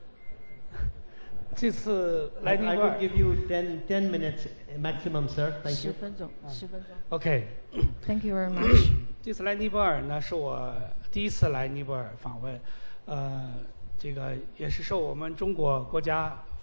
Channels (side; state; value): both; inverted; correlation -1.00